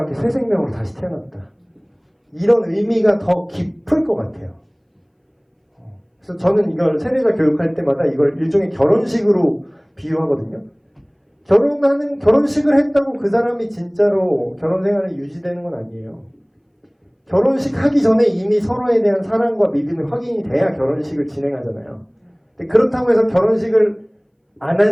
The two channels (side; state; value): both; identical; correlation 1.00